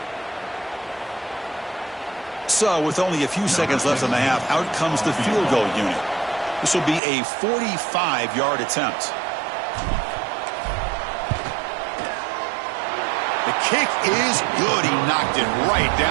So, with only a few seconds left in the half, out comes the field goal unit. This will be a 45-yard attempt. The kick is good. He knocked it right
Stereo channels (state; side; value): drops out; left; at 7.0 s